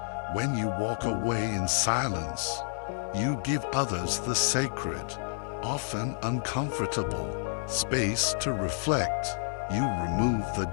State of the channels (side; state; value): right; silent; digital silence